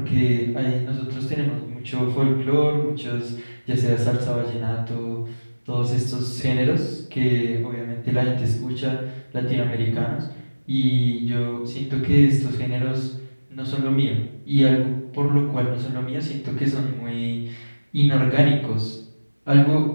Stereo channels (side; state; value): both; inverted; correlation -1.00